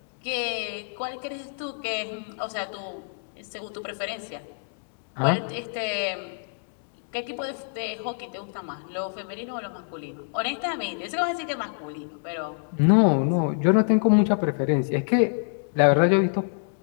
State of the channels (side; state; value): right; silent; digital silence